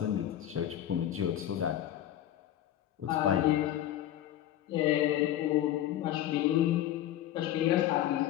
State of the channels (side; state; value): right; quieter; 12.2 dB